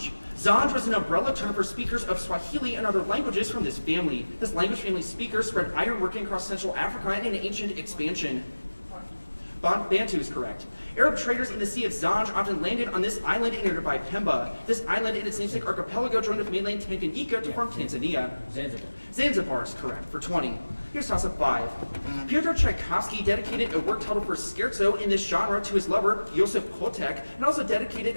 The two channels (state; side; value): inverted; both; correlation -1.00